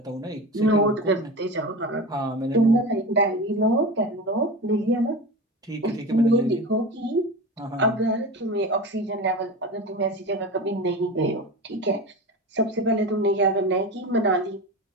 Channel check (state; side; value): normal; both; correlation 0.27